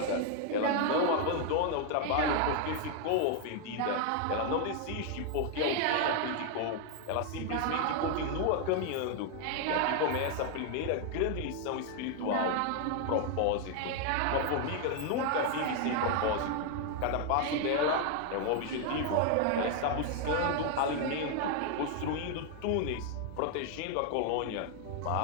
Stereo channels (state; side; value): different; both; correlation 0.00